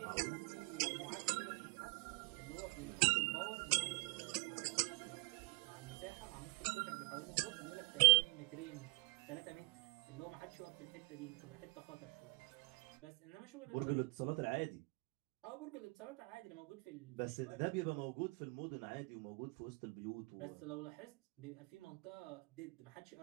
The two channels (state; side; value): quieter; left; 30.9 dB